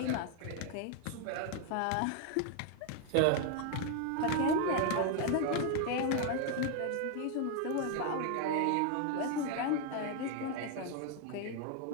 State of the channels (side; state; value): both; different; correlation 0.01